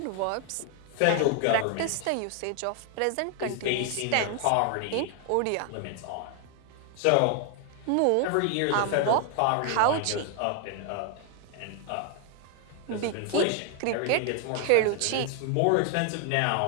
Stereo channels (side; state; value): both; different; correlation 0.00